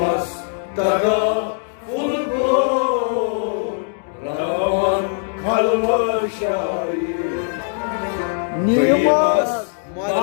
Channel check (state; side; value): silent; right; 66 dB below the other